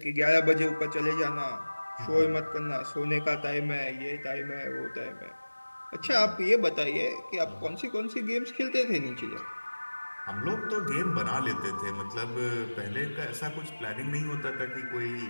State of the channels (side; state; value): both; inverted; correlation -1.00